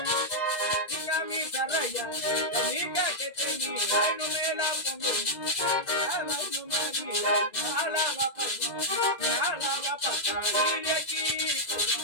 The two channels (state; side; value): late; right; 2.0 ms